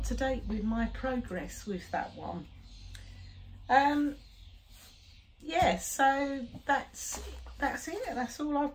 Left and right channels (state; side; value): identical; both; correlation 1.00